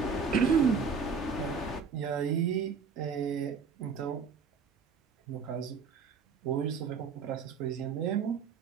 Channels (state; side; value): quieter; left; 5.5 dB